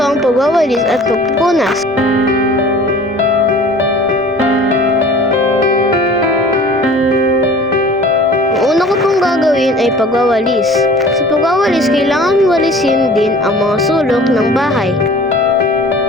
ang pagwawalis at pagpupunas. Ang una ko pong gagawin ay pagwawalis. Sa pagwawalis, kailangan walisin din ang mga sulok ng bahay.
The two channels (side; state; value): both; normal; correlation 0.46